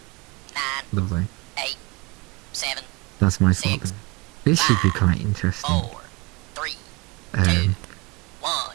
9, lovely. 8, 7, That's my thought Six, there. This should be quite interesting. 4, 3, Um, 1.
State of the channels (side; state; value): left; quieter; 25.4 dB